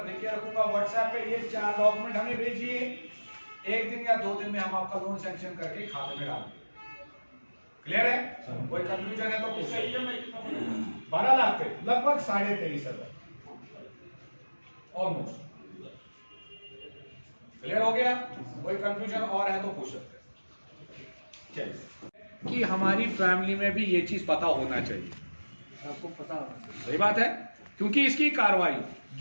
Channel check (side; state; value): both; inverted; correlation -1.00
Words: देके रखूंगा व्हाट्सएप पे, ये 4 डॉक्यूमेंट हमें भेजिए, 1 दिन या 2 दिन में हम आपका लोन सैंक्शन करके खाते में डाल देंगे। क्लियर है? कोई कंफ्यूजन है तो पूछिए। 12 लाख पे लगभग 23,500 ऑलमोस्ट। क्लियर हो गया? कोई कंफ्यूजन और है तो पूछ सकते हैं। चलिए, कि हमारी फैमिली में भी ये चीज पता होना चाहिए, आपको पता होना चाहिए। सही बात है, क्योंकि इसकी कार्रवाई